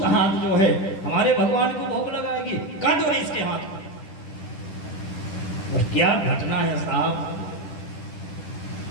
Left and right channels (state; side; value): late; right; 10 ms